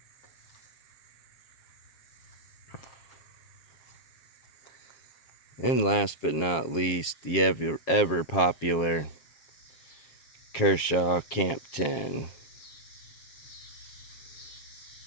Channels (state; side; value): late; right; 7.4 ms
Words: And last but not least, the ever popular Kershaw Camp 10.